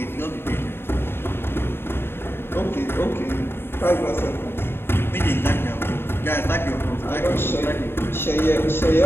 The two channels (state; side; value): late; right; 0.11 ms